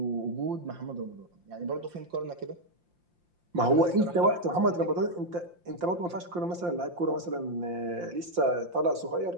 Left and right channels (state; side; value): late; left; 5.7 ms